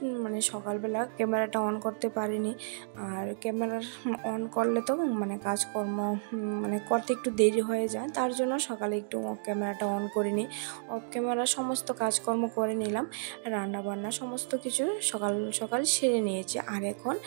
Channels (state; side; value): silent; left; digital silence